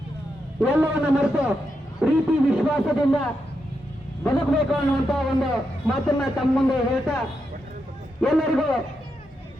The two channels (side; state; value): both; normal; correlation 0.84